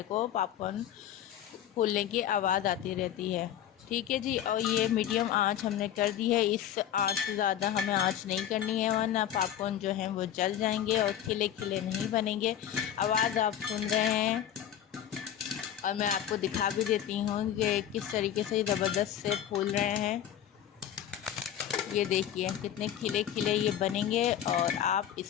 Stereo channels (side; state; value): right; quieter; 10.5 dB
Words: को पॉपकॉर्न फूलने की आवाज़ आती रहती है। ठीक है जी। और ये मीडियम आंच हमने कर दी है, इस आंच से ज़्यादा हमें आंच नहीं करनी है, वरना पॉपकॉर्न जो है वो जल जाएंगे और खिले खिले नहीं बनेंगे। आवाज़ आप सुन रहे हैं और मैं आपको दिखा भी देती हूँ कि किस तरीके से ज़बरदस्त से फूल रहे हैं। ये देखिए कितने खिले खिले ये बनेंगे। और आप